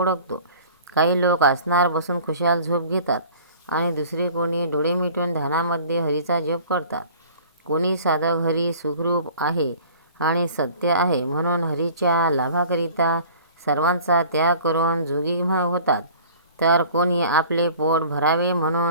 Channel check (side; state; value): both; inverted; correlation -0.47